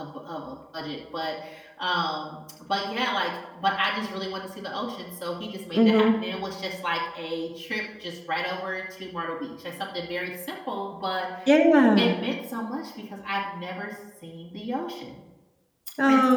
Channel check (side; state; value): both; identical; correlation 1.00